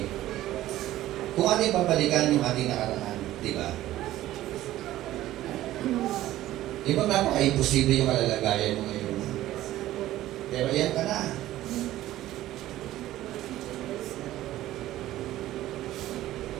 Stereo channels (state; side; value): quieter; left; 14.7 dB